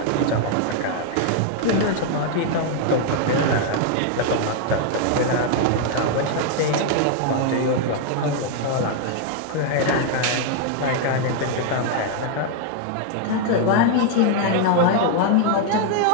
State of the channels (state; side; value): different; both; correlation 0.00